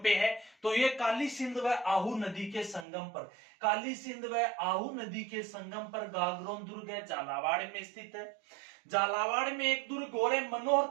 पे है? तो ये काली सिंध व आहू नदी के संगम पर, काली सिंध व आहू नदी के संगम पर गागरोन दुर्ग है, झालावाड़ में स्थित है। झालावाड़ में एक दुर्ग और है, मनोहर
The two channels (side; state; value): left; drops out; at 2.9 s